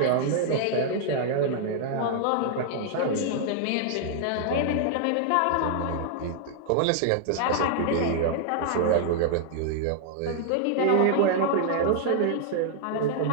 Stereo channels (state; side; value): different; both; correlation -0.01